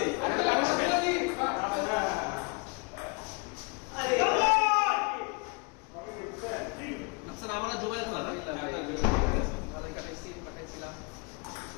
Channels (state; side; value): quieter; right; 32.2 dB